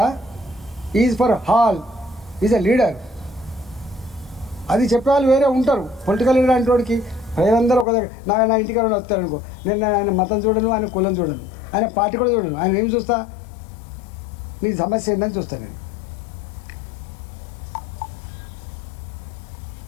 is for all, is a leader. అది చెప్పేవాళ్ళు వేరే ఉంటారు. పొలిటికల్ లీడర్ అంటే వాడికి ప్రజలందరూ ఒక దగ్గర నా ఇంటికి వస్తారనుకో, నేను ఆయన మతం చూడను, ఆయన కులం చూడను, ఆయన పార్టీ కూడా చూడను. ఆయన ఏం చూస్తా? నీ సమస్య ఏంటని చూస్తాను నేను.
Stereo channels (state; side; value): drops out; right; at 7.9 s